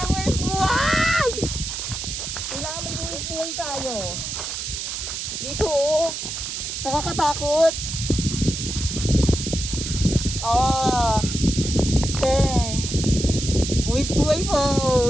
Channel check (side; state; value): right; noise; hiss, 5 dB below the sound